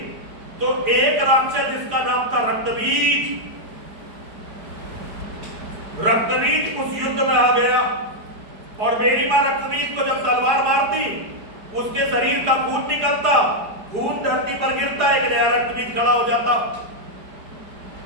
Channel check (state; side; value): late; left; 4.8 ms